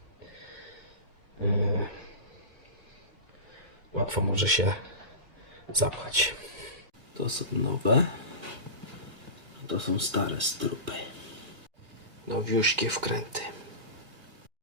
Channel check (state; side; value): late; left; 2.2 ms